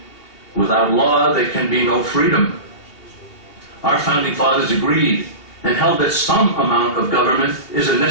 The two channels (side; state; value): right; late; 2.8 ms